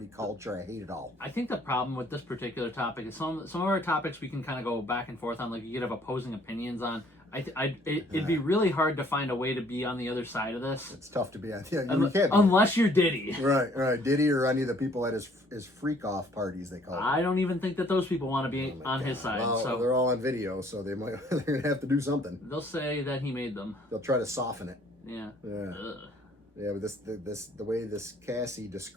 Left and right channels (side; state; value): both; normal; correlation 0.60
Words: culture. I hate it all. I think the problem with this particular topic is some of our topics we can kind of go back and forth on. Like you could have opposing opinions on. It'd be really hard to find a way to be on the other side of this, It's tough to be on. Yeah, you can't. Be. unless you're Diddy. Right. Diddy or any of the people at his freak off parties they call it. I don't even think that those people want to be on his side. Well, So they're all on video, so they're gonna have to do something. they'll say that he made them. They'll try to soften it. Yeah. Yeah. Ugh. Yeah, but the way this Cassie